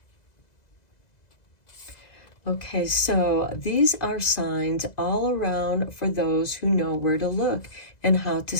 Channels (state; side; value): late; right; 2.0 ms